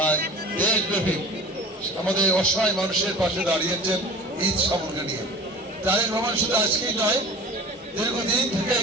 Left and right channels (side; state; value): both; normal; correlation 0.40